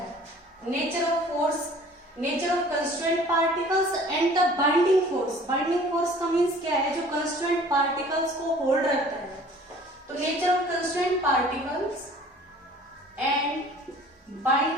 nature of constraint particles and the binding force. Binding force का मीन्स क्या है? जो कंस्ट्रेंट पार्टिकल्स को होल्ड रखता है। तो nature of constraint particles and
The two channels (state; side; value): normal; both; correlation 0.50